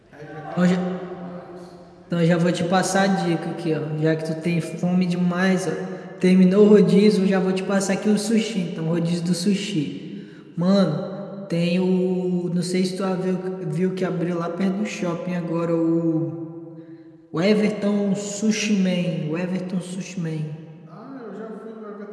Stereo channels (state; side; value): identical; both; correlation 1.00